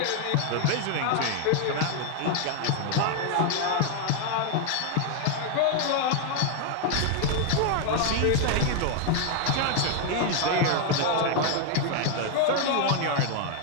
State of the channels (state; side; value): different; both; correlation 0.00